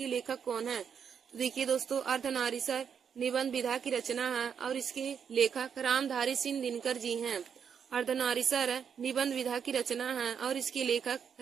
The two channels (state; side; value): quieter; left; 7.3 dB